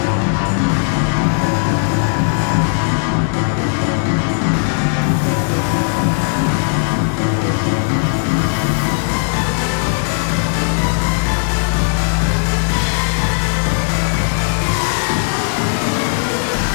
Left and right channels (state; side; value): silent; right; digital silence